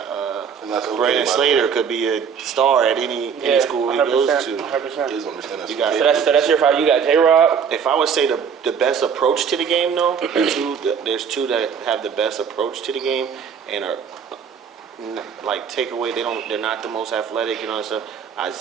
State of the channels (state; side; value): quieter; left; 7.0 dB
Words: And that's okay, Brandon by the Slater way. could be a star at any school he goes 100%. to. 100%. Kids understand that. You got- So that's your 5. You got J-Rob. If I would say the best approach to the game, though, there's 2 that have the best approach to the game and are like takeaway. They're not the most athletic, you know. So I'd